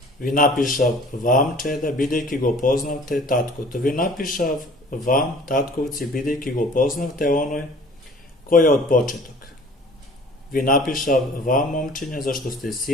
Ви напишав вам, чеда, бидејќи го познавте таткото. Ви напишав вам, татковци, бидејќи го познавте оној кој е од почеток. Ви напишав вам, момчиња, зашто сте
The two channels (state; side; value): normal; both; correlation 0.49